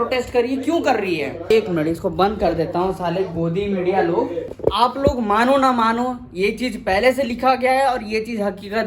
कर रही है, क्यों कर रही है? एक मिनट, इसको बंद कर देता हूँ। साले गोदी मीडिया लोग, आप लोग मानो ना मानो, ये चीज पहले से लिखा गया है और ये चीज हकीकत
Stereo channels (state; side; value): identical; both; correlation 1.00